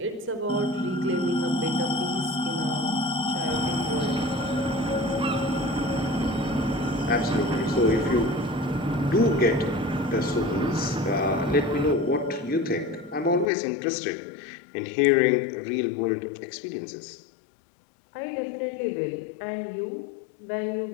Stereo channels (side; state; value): right; drops out; at 13.5 s